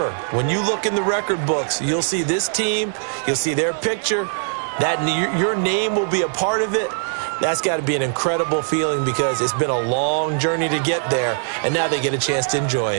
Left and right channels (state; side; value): silent; left; 65 dB below the other